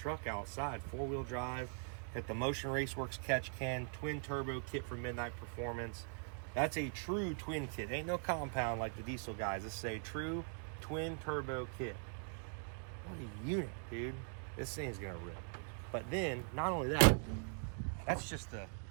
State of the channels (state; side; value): silent; left; 50 dB below the other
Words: outside. 4-wheel drive, got the Motion Raceworks catch can, twin turbo kit for Midnight Performance. That's a true twin kit. Ain't no compound like the diesel guys. This is a true twin turbo kit. What a unit, dude. This thing's gonna rip. But then, not only that, that's just the